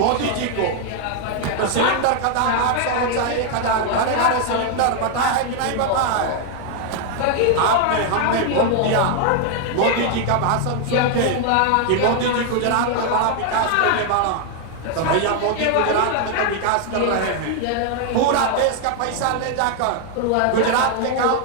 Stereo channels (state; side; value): different; both; correlation 0.00